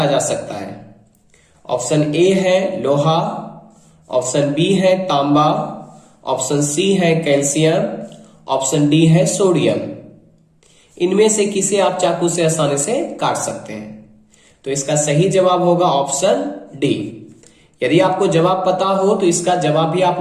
जा सकता है। ऑप्शन ए है लोहा, ऑप्शन बी है तांबा, ऑप्शन सी है कैल्शियम, ऑप्शन डी है सोडियम। इनमें से किसे आप चाकू से आसानी से काट सकते हैं? तो इसका सही जवाब होगा ऑप्शन डी। यदि आपको जवाब पता हो तो इसका जवाब भी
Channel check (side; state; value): both; identical; correlation 1.00